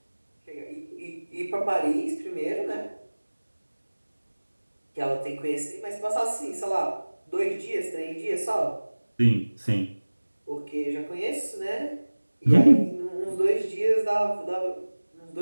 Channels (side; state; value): both; inverted; correlation -1.00